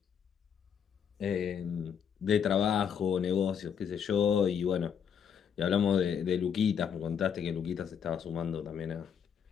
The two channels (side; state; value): right; quieter; 7.7 dB